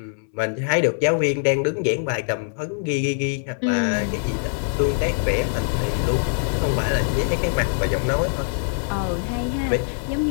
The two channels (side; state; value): right; silent; 63 dB below the other